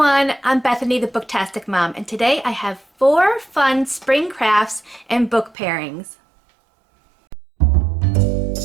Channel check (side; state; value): left; drops out; at 5.6 s